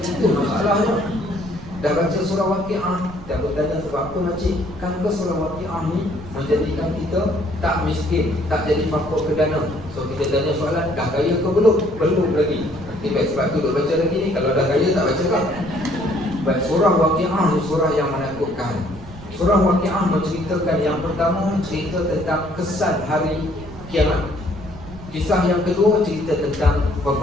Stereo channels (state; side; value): noise; right; rumble, 15 dB below the sound